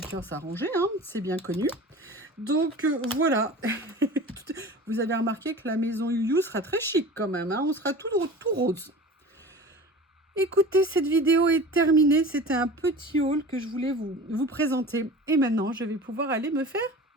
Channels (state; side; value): normal; both; correlation 0.37